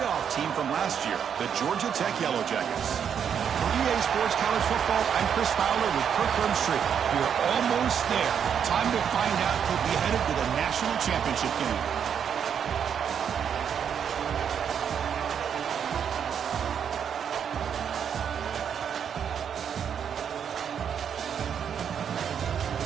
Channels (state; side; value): quieter; left; 7.9 dB